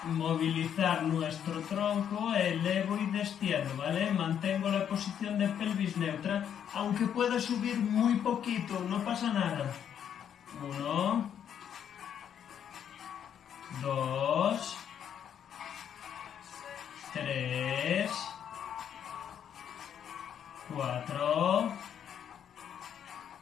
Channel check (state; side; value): quieter; right; 8.9 dB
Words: movilizar nuestro tronco, elevo y destiendo, ¿vale? Mantengo la posición de pelvis neutra, aunque pueda subir muy poquito, no pasa nada. 1, 2, 3, 4,